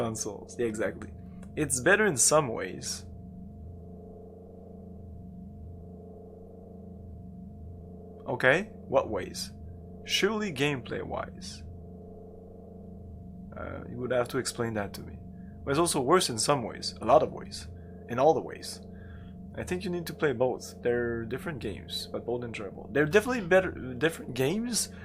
Yeah, exactly. It's better in some ways. Okay, what ways? Surely gameplay wise. You would have to explain that to me. But it's also worse in some ways, a lot of ways, in all the ways. I think you need to play both. They're different games, but both enjoyable. They're definitely different games,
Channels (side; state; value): both; identical; correlation 1.00